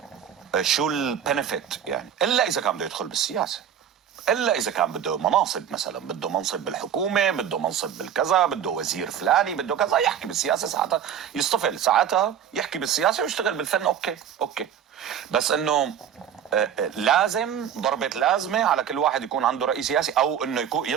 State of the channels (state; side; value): quieter; left; 8.9 dB